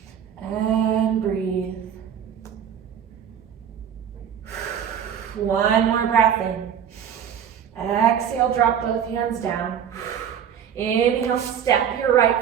And breathe. One more breath in. Exhale, drop both hands down. Inhale, step your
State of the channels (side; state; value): left; quieter; 8.6 dB